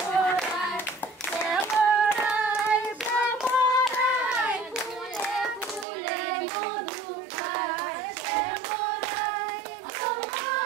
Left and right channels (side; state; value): left; drops out; at 5.9 s